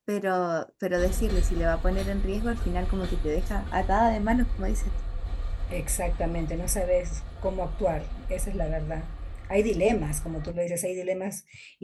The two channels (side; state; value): both; identical; correlation 1.00